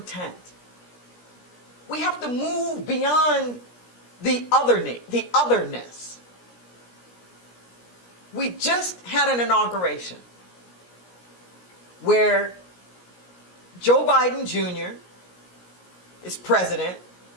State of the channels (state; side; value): late; right; 17 ms